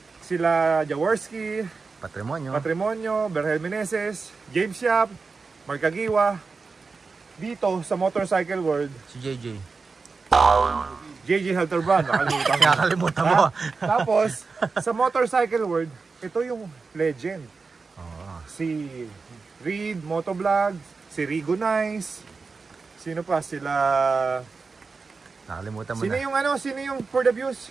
Sila Jaworski, Patrimonio, Berhel Meneses, James Yap, Mark Agiwa. Dito, sa motorcycle world, Si JJ. JJ Halterbrand, Nakalimutan mo. Tapos, sa motorcycle world, ito yung legend. Si Reed Motovlog, si Rigo Nice, sino pa? Sila... Nakalimutan mo Sino na. yung Sino yung For the Views?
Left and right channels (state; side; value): quieter; left; 4.5 dB